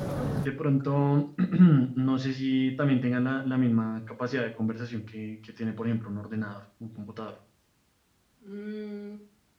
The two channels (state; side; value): identical; both; correlation 1.00